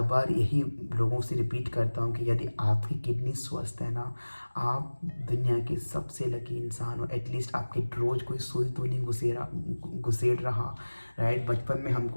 बार यही लोगों से रिपीट करता हूँ कि यदि आपकी किडनी स्वस्थ है ना, आप दुनिया के सबसे लकी इंसान हो। एटलीस्ट आपके रोज़ कोई सुई तो नहीं घुसेड़ रहा, राइट। बचपन में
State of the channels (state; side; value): inverted; both; correlation -1.00